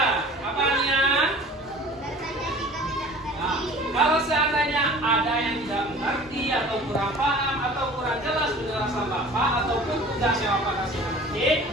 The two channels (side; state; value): both; normal; correlation 0.45